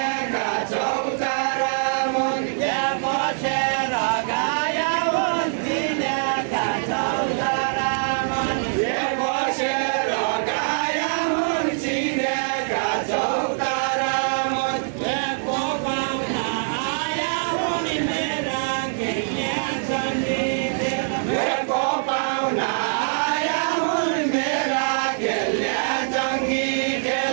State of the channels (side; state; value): left; silent; digital silence